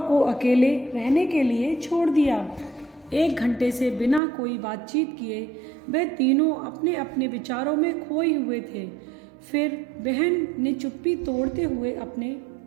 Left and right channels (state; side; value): drops out; left; at 4.2 s